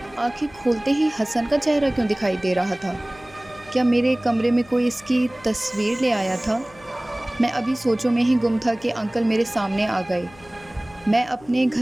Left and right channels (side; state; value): left; noise; hum, 24 dB below the sound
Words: آنکھیں کھولتے ہی حسن کا چہرہ کیوں دکھائی دے رہا تھا؟ کیا میرے کمرے میں کوئی اس کی تصویر لے آیا تھا؟ میں ابھی سوچوں میں ہی گم تھا کہ انکل میرے سامنے آ گئے۔ میں اپنے